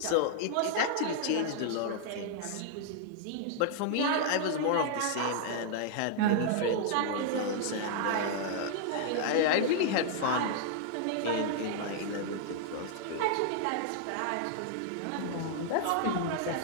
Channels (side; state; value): both; different; correlation -0.01